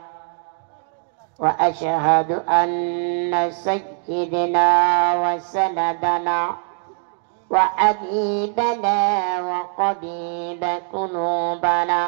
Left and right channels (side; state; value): left; silent; digital silence